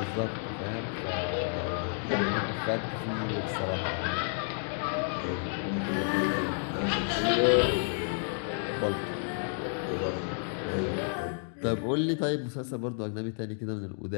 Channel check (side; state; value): right; silent; 57 dB below the other